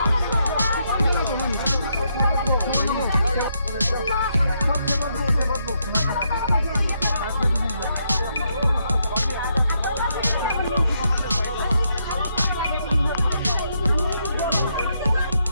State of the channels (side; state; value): both; inverted; correlation -0.78